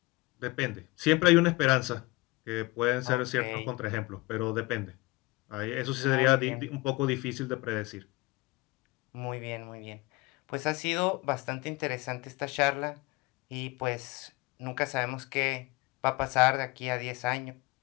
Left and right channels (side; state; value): right; quieter; 23.2 dB